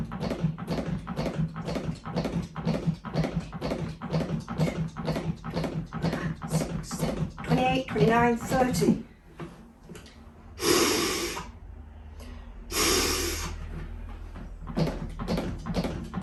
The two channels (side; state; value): both; identical; correlation 1.00